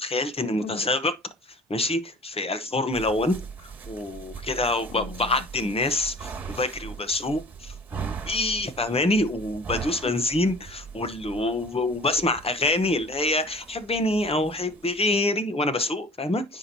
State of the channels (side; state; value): both; normal; correlation 0.45